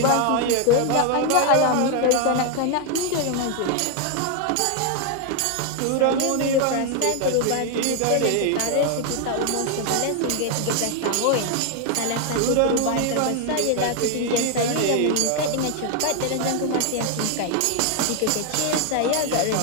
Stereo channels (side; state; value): both; different; correlation 0.00